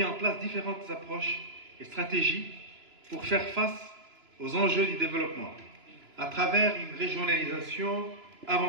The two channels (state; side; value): late; left; 2.9 ms